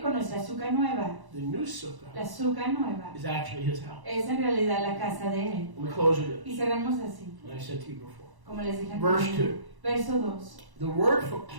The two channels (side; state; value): left; late; 1.0 ms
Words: con nuestra sukkah nueva. The new sukkah. La sukkah nueva. Is actually his house. Es en realidad la casa de él. And we close with Y cerramos así. Like I said to you before. Como les dije Verse 2. Verso 2. The word for